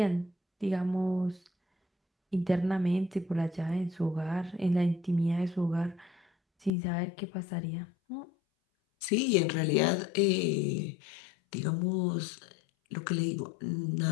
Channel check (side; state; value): right; drops out; at 6.7 s